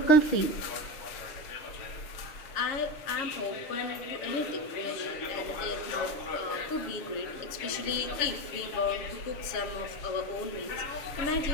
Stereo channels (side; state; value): right; late; 6.6 ms